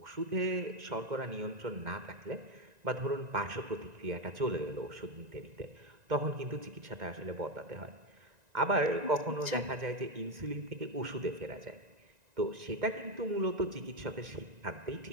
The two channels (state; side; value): late; left; 1.9 ms